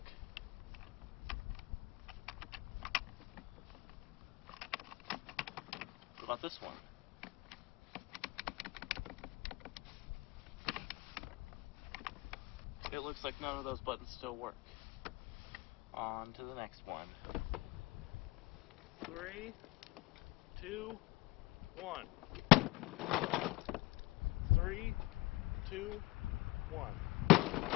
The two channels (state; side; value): quieter; right; 22.0 dB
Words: What about this one? It looks like none of those buttons still work. On to the next one. 3, 2, 1. 3, 2, 1.